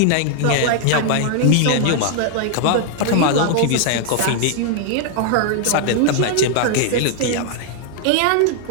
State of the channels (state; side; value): different; both; correlation 0.00